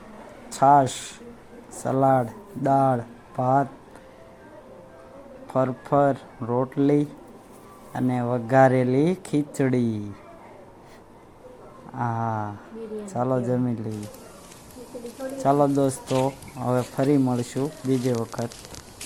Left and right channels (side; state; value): both; identical; correlation 1.00